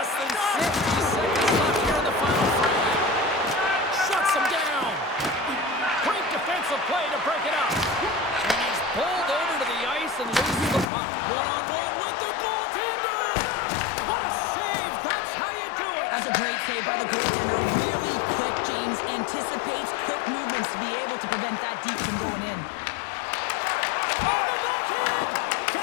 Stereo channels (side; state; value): right; drops out; at 10.9 s